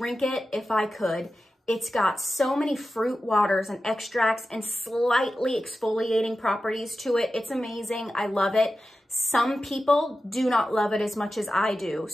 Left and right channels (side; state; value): both; normal; correlation 0.93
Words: it if I could. It's got so many fruit waters and extracts and slightly exfoliating properties to it. It's amazing. I love it. Some people do not love it as much as I do.